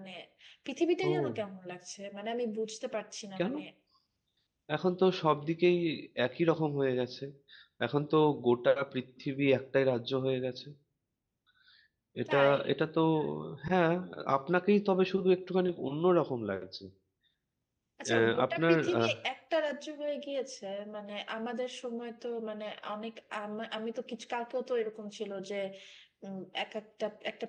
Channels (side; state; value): both; identical; correlation 1.00